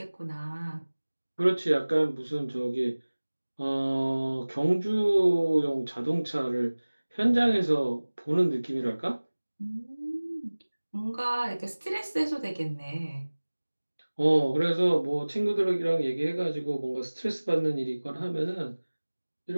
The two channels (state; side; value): inverted; both; correlation -1.00